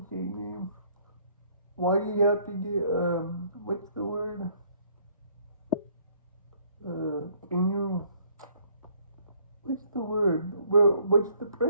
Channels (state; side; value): inverted; both; correlation -0.63